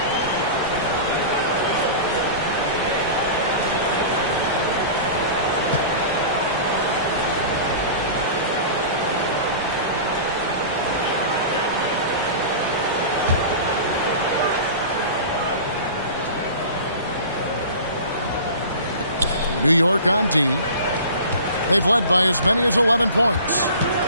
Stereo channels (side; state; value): both; inverted; correlation -0.36